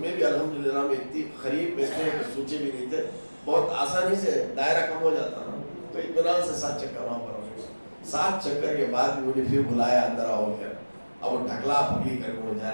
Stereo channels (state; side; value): inverted; both; correlation -1.00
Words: में भी अल्हम्दुलिल्लाह में इतनी करीब में थे कि सोचे भी नहीं थे, बहुत आसानी से दायरा कम हो जाता ना, तो इत्मीनान से 7 चक्कर वहाँ पर हो गए। 7 चक्कर के बाद मुझे फिर बुलाया अंदर आओ कर, अब वो ढकला पकड़ी कर मुझे